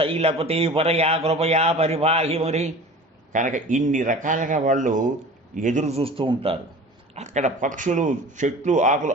పరయా కృపయా పరిపాహి మరి. కనుక ఇన్ని రకాలుగా వాళ్ళు ఎదురు చూస్తూ ఉంటారు. అక్కడ పక్షులు, చెట్లు, ఆకులు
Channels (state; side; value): normal; both; correlation 0.39